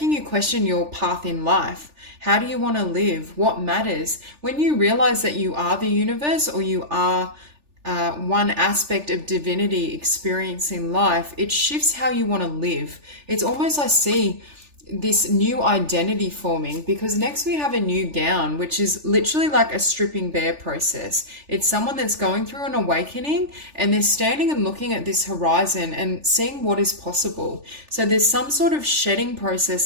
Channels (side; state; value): left; late; 3.4 ms